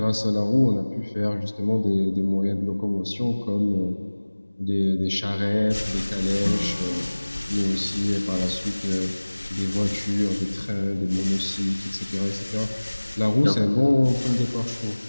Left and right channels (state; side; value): inverted; both; correlation -1.00